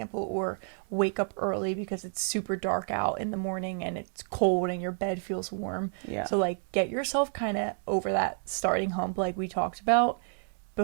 or wake up early because it's super dark out in the morning and it's cold and your bed feels warm. Yeah. So like get yourself kind of over that starting hump like we talked about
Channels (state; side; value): silent; left; 58 dB below the other